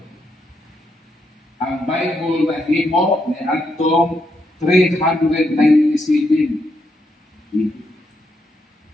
Ang Bible na himo ni Antong 397.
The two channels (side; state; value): both; normal; correlation 0.80